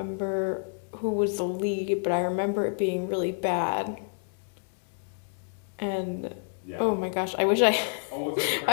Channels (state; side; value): silent; right; digital silence